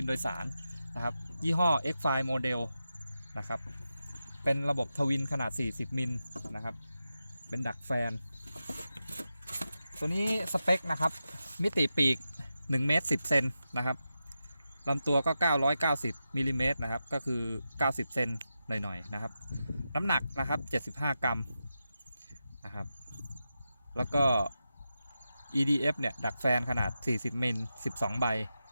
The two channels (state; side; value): inverted; both; correlation -0.90